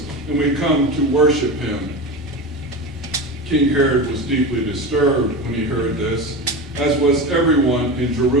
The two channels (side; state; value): both; normal; correlation 0.25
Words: and we come to worship him." King Herod was deeply disturbed when he heard this, as was everyone in